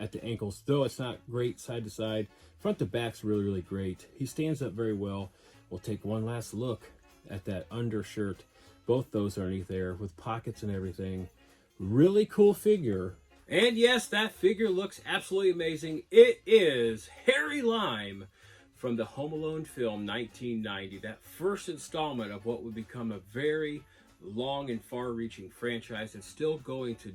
at the ankles, though it's not great side to side. Front to back's really, really great. He stands up very well. We'll take one last look at that undershirt. Both those are underneath there with pockets and everything. Really cool figure. And yes, that figure looks absolutely amazing. It is Harry Lime from the Home Alone film 1990, that first installment of what would become a very long and far-reaching franchise that's still going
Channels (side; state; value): both; identical; correlation 1.00